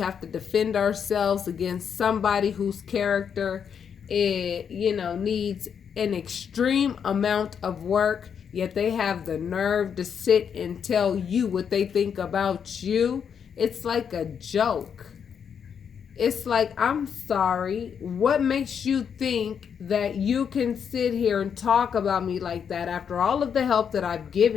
to defend ourselves against somebody whose character needs an extreme amount of work, yet they have the nerve to sit and tell you what they think about you, it's like a joke. It's like, I'm sorry, what makes you think that you can sit here and talk about me like that after all of the help that I've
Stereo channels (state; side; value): quieter; right; 7.4 dB